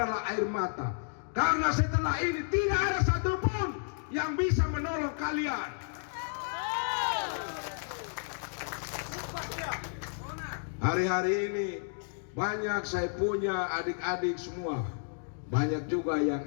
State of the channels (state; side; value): silent; right; digital silence